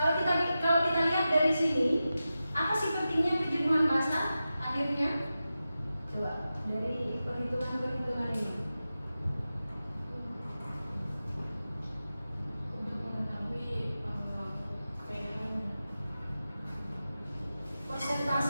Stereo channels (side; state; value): both; inverted; correlation -0.93